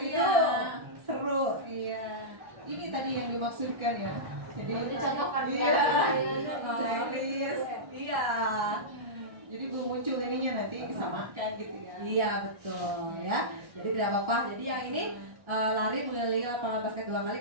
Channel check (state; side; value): late; left; 1.3 ms